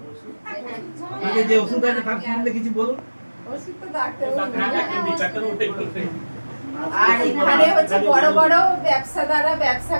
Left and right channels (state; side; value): inverted; both; correlation -1.00